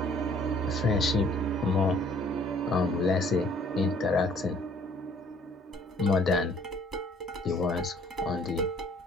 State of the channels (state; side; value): normal; both; correlation 0.59